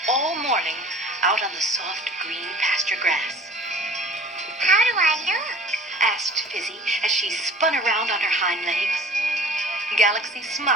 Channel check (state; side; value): normal; both; correlation 0.45